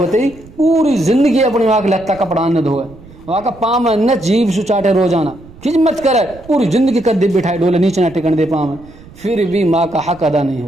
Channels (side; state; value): right; noise; rumble, 21 dB below the sound